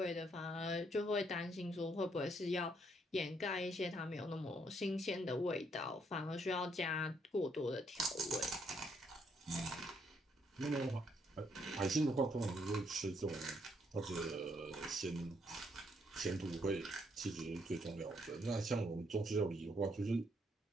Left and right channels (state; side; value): normal; both; correlation 0.72